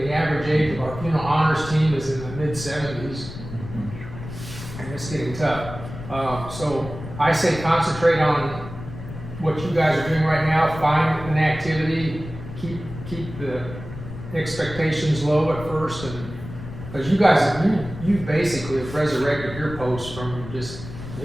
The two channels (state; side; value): noise; left; rumble, 11 dB below the sound